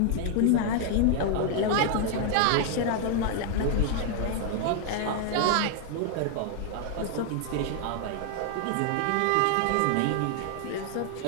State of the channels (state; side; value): different; both; correlation 0.00